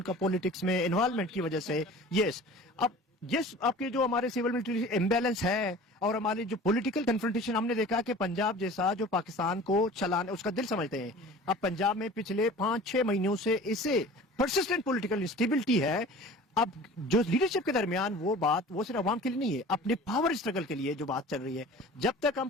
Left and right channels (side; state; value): both; normal; correlation 0.42